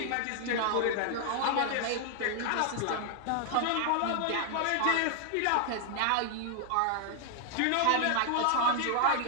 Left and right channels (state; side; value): different; both; correlation 0.00